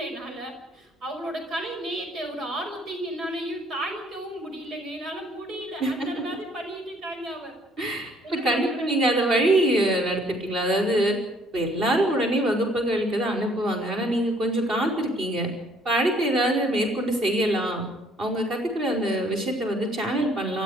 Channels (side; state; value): both; normal; correlation 0.62